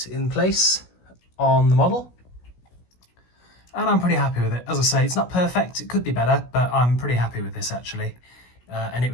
in place on the model. And I'm pretty happy with it. As I say, it's not perfect, it could be better, but I'm pretty happy with this actually. And it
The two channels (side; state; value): right; late; 16 ms